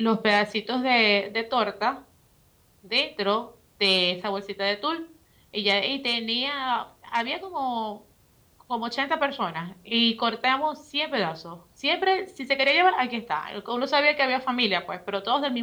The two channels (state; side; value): identical; both; correlation 1.00